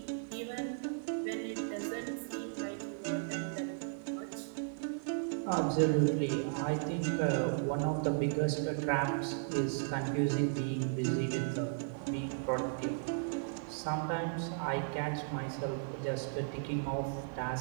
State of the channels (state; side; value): silent; left; digital silence